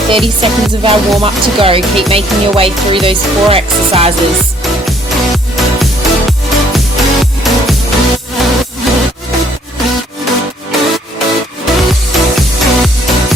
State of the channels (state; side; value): normal; both; correlation 0.63